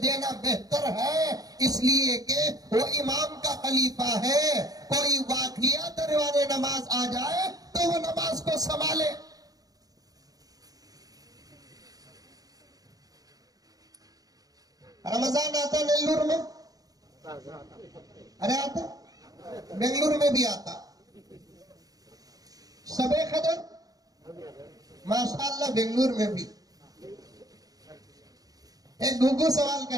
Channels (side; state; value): left; late; 0.18 ms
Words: دینا بہتر ہے، اس لیے کہ وہ امام کا خلیفہ ہے. کوئی واقعہ دروازے نماز آ جائے تو وہ نماز کو سنبھالے. رمضان آتا نیلور میں، ارے آتا بنگلور میں بھی آتا. شب قدر ماشاءاللہ بنگلور میں بھی. ایک گھگو سوال